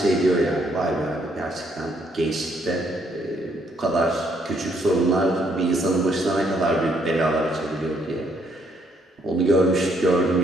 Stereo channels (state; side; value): normal; both; correlation 0.70